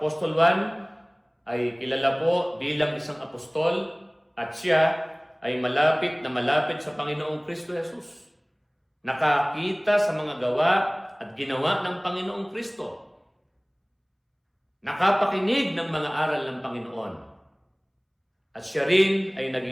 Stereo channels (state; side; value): identical; both; correlation 1.00